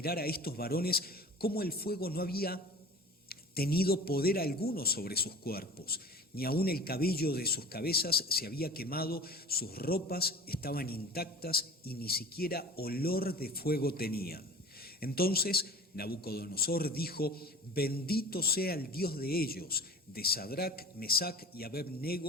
a estos varones cómo el fuego no había tenido poder alguno sobre sus cuerpos, ni aun el cabello de sus cabezas se había quemado, sus ropas estaban intactas y ni siquiera olor de fuego tenían. Entonces Nabucodonosor dijo: bendito sea el Dios de ellos, de Sadrac, Mesac y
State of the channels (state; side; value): normal; both; correlation 0.41